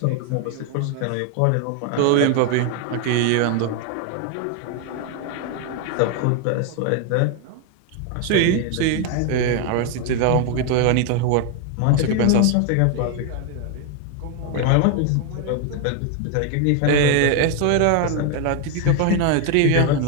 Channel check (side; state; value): both; different; correlation 0.01